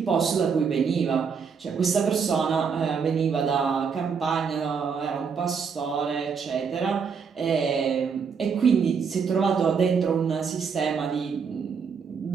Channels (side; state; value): left; quieter; 6.1 dB